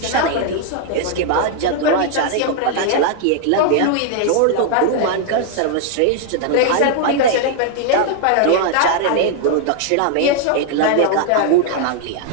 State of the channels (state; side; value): different; both; correlation 0.00